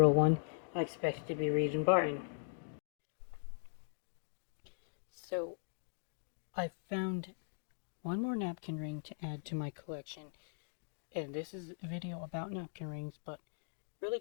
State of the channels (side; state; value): right; silent; digital silence